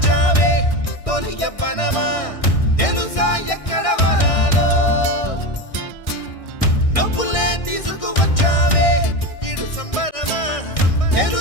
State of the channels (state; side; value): late; right; 1.6 ms